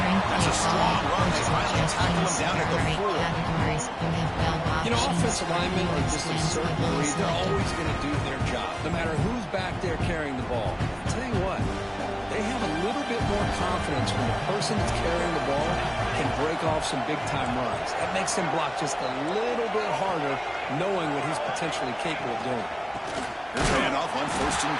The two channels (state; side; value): identical; both; correlation 1.00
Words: That's a strong run. They finally tackle him down at the 4. You know, offensive linemen are just a certain breed. They're always going to do their job, no matter who's back there carrying the ball. I'll tell you what, they have a little bit more confidence when the person that's carrying the ball can break off some big-time runs. That makes him block just a little bit harder, knowing what he's potentially capable of doing. Here's a handoff on 1st and